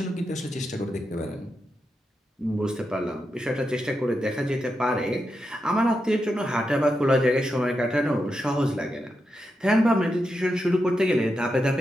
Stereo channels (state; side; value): normal; both; correlation 0.86